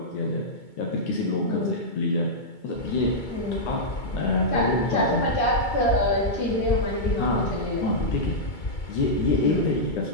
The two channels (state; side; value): late; right; 2.2 ms